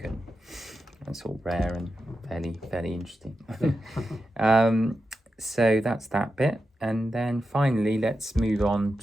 and that's all rare and fairly interesting. So that's that bit. And then finally, let's move on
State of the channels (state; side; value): normal; both; correlation 0.89